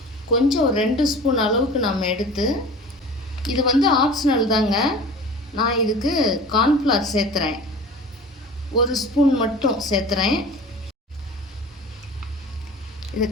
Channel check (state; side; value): normal; both; correlation 0.39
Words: கொஞ்சம் ஒரு 2 ஸ்பூன் அளவுக்கு நம்ம எடுத்து, இது வந்து ஆப்ஷனல் தாங்க, நான் இதுக்கு கார்ன்ஃப்ளவர் சேர்த்துறேன். 1 ஸ்பூன் மட்டும் சேர்த்துறேன். இது